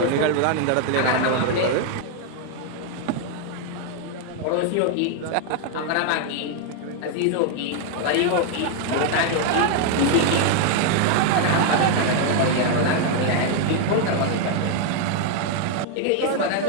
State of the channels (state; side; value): different; both; correlation 0.00